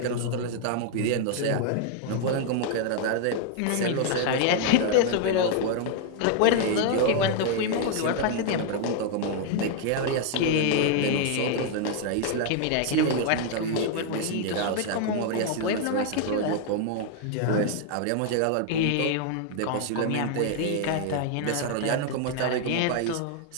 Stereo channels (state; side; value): different; both; correlation 0.00